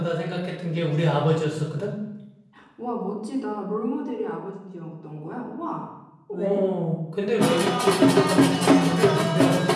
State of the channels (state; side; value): identical; both; correlation 1.00